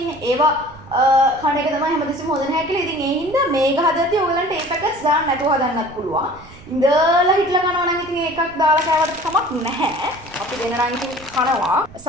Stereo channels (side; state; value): right; noise; rumble, 20 dB below the sound